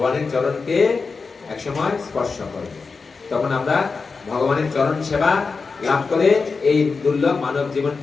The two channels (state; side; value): quieter; right; 4.6 dB